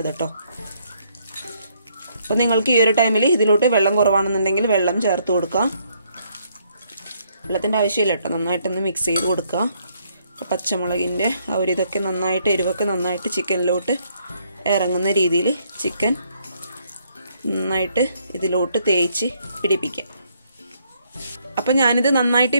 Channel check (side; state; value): both; inverted; correlation -0.70